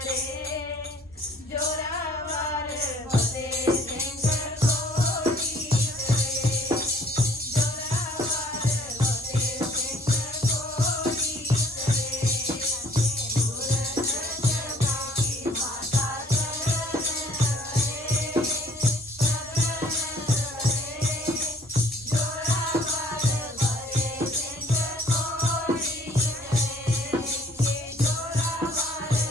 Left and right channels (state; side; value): normal; both; correlation 0.58